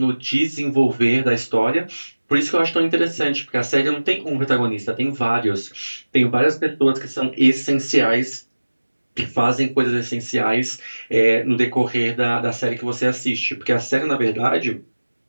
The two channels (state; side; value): inverted; both; correlation -1.00